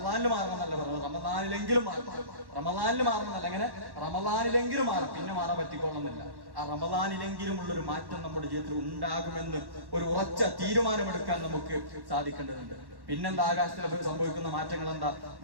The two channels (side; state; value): left; late; 1.1 ms